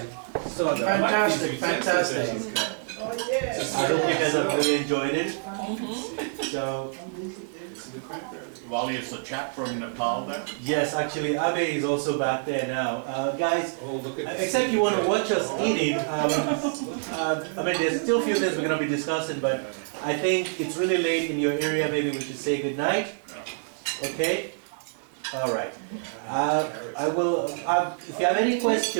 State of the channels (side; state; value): left; silent; digital silence